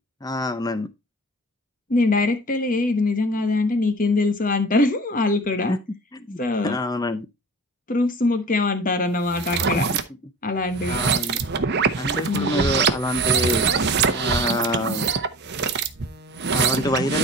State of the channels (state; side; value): normal; both; correlation 0.40